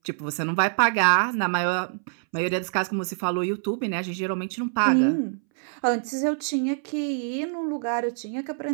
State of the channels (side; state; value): left; silent; 61 dB below the other